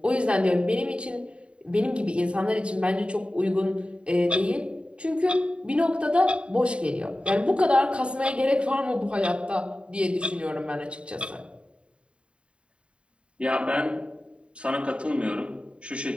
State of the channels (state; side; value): late; left; 0.056 ms